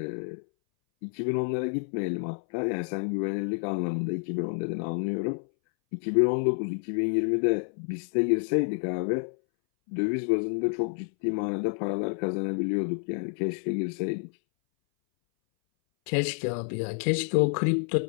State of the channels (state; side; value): silent; right; 59 dB below the other